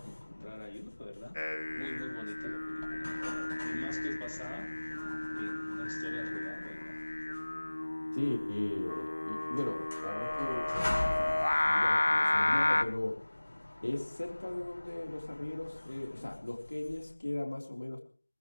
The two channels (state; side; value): inverted; both; correlation -1.00